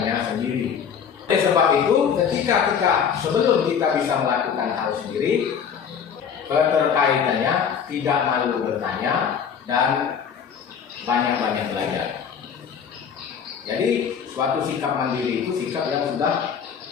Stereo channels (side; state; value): right; quieter; 7.3 dB